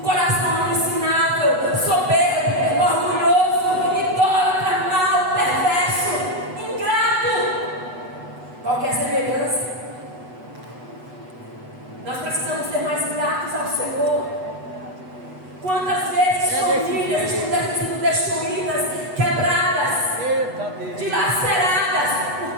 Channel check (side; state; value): left; late; 8.1 ms